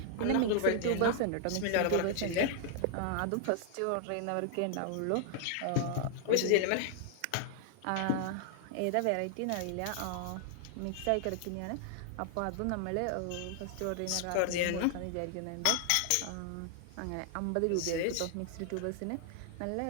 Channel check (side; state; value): both; different; correlation 0.00